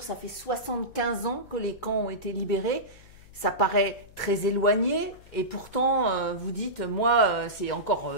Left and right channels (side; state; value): left; noise; hum, 23 dB below the sound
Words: ça fait 75 ans que les camps ont été libérés. Ça paraît très éloigné et pourtant, vous dites, moi, c'est encore